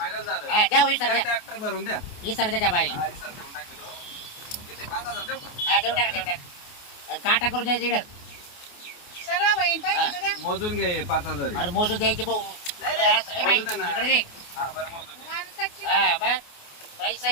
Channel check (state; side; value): late; right; 28 ms